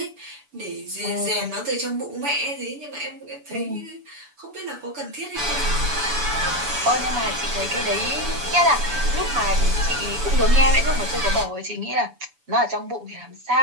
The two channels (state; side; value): late; left; 6.9 ms